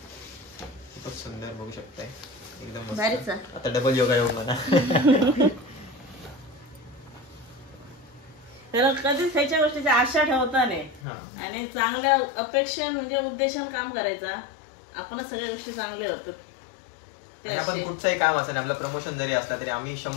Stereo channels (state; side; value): drops out; right; at 11.0 s